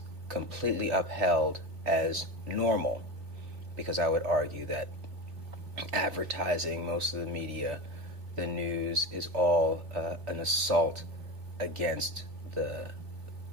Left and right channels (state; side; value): late; left; 3.6 ms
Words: completely upheld as normal, because I would argue that advertising, most of the media, the news, is all an assault against